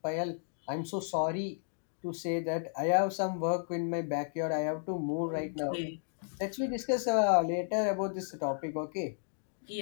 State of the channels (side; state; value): right; silent; digital silence